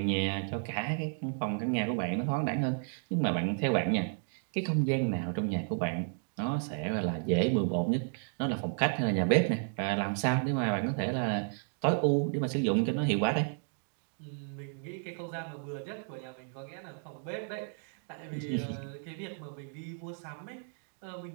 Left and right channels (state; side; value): silent; left; 56 dB below the other